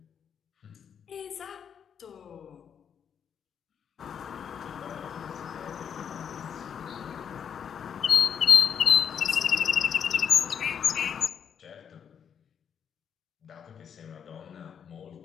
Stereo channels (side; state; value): right; quieter; 7.7 dB